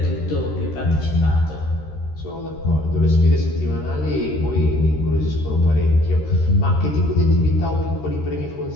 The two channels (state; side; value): late; right; 13 ms